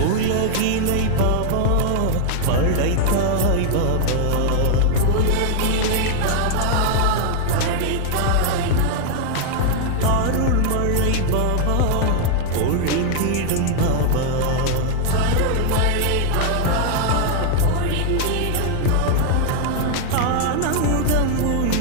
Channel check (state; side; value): different; both; correlation 0.00